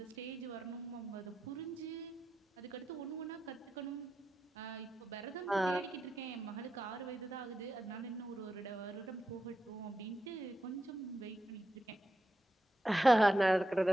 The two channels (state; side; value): normal; both; correlation 0.87